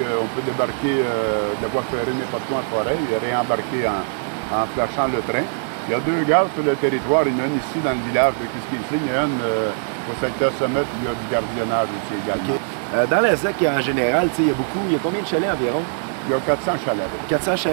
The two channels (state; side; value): silent; left; digital silence